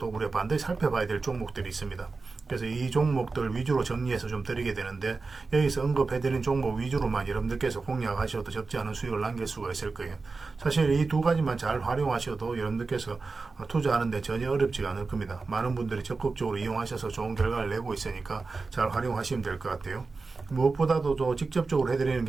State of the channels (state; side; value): quieter; left; 4.1 dB